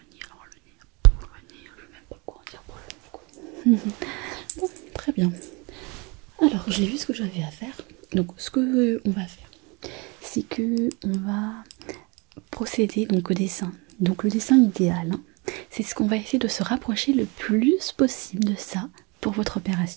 alors le nez, pour le nez, je ne sais même pas quoi en dire pour le nez, quoi. Bon, très bien. Alors, j'ai vu ce que j'avais à faire. Donc, ce que on va faire, c'est que on va procéder donc au dessin. Donc le dessin idéal, hein, c'est ce qu'on va essayer de se rapprocher le plus possible de ça pour votre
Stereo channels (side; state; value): left; quieter; 28.8 dB